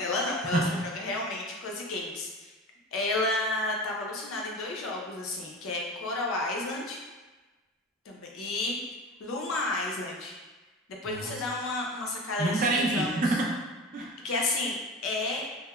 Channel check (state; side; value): normal; both; correlation 0.32